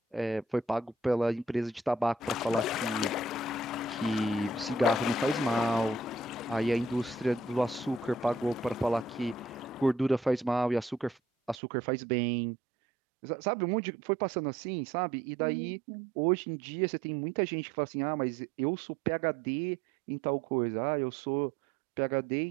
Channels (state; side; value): drops out; left; at 11.6 s